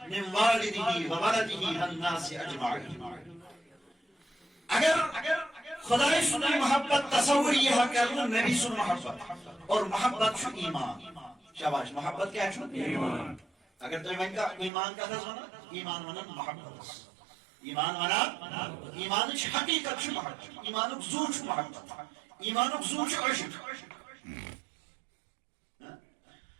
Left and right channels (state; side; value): drops out; left; at 14.7 s